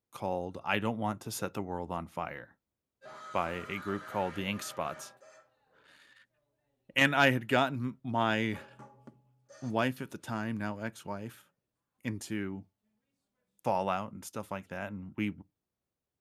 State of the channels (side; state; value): both; identical; correlation 1.00